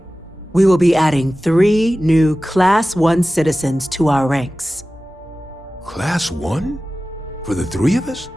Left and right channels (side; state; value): both; normal; correlation 0.96